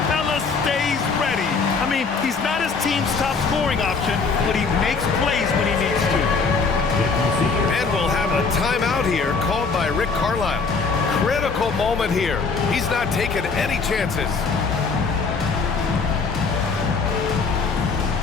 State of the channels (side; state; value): right; quieter; 4.7 dB